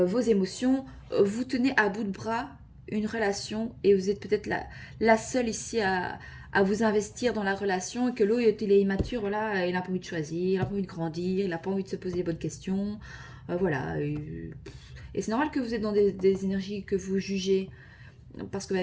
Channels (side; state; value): both; identical; correlation 1.00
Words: émotions. Vous tenez à bout de bras une relation et vous êtes peut-être la seule ici à vous investir dans la relation et que l'autre, il est immature, voilà, il n'a pas envie de choisir, il n'a pas envie de grandir, il n'a pas envie de se poser les bonnes questions. Voilà. Et c'est normal que vous êtes dans des énergies que vous jugez. Parce que, bah,